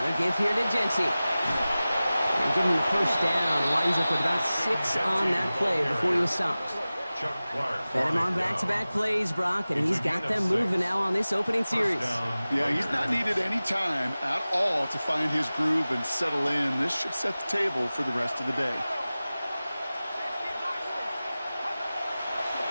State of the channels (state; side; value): inverted; both; correlation -0.97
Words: give here to Genty. And give him the first down. Winds up with about 6 on that play before he was stopped. Fed him on back-to-back plays, Brock, and he's got them moving now on this opening series. Yeah, he's not needed any time at all to find his groove and settle in. This should set the table for the rest of the day.